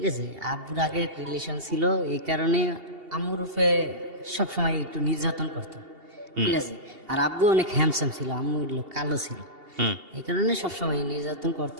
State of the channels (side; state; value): left; late; 2.8 ms